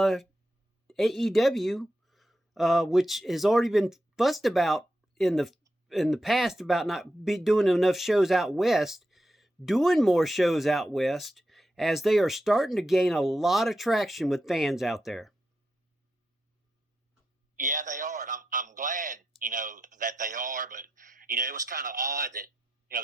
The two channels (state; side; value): normal; both; correlation 0.86